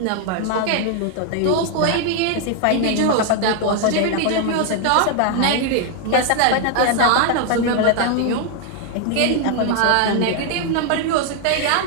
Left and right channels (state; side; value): different; both; correlation 0.00